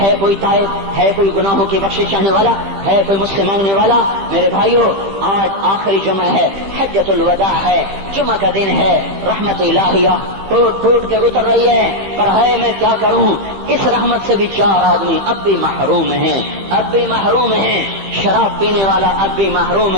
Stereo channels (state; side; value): late; left; 15 ms